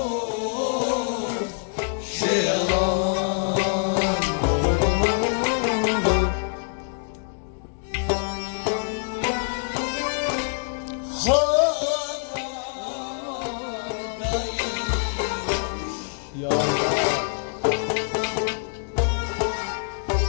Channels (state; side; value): silent; right; digital silence